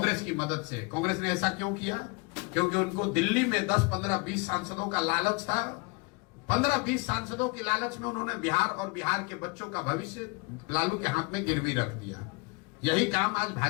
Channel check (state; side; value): quieter; right; 29.3 dB